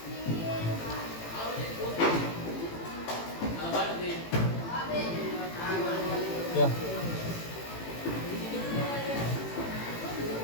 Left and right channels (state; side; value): late; right; 18 ms